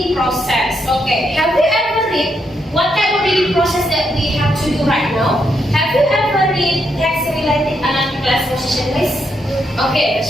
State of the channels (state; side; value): normal; both; correlation 0.79